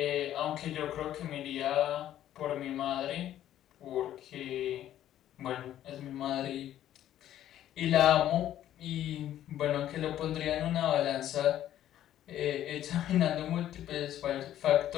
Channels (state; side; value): quieter; right; 12.0 dB